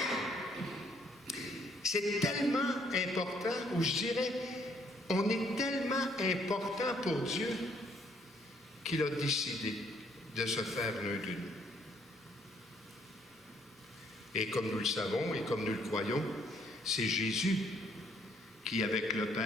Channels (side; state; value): both; normal; correlation 0.67